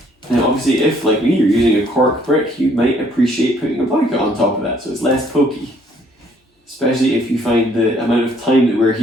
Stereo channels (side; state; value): both; normal; correlation 0.63